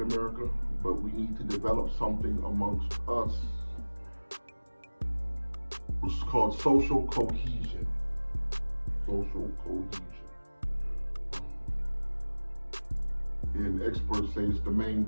America, but we need to develop something amongst us which is called social cohesion. Social cohesion. And experts say it's the main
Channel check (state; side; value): inverted; both; correlation -1.00